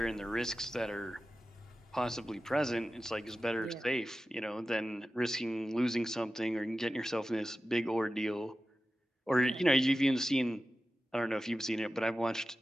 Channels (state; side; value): normal; both; correlation 0.94